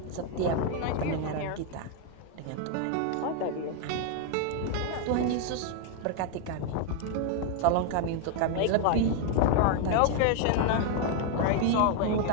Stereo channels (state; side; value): different; both; correlation 0.00